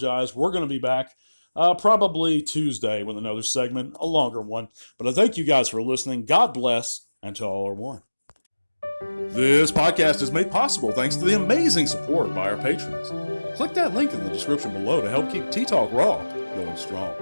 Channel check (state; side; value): inverted; both; correlation -1.00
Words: We're going to be back probably Tuesday with another segment, a longer one. But I thank you guys for listening. God bless, and to all are one. This podcast is made possible thanks to the amazing support by our patrons. Click that link in the description below to help keep T-Talk Raw going strong.